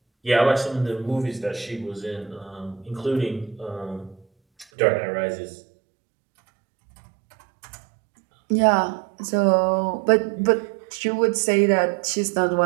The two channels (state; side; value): drops out; left; at 4.7 s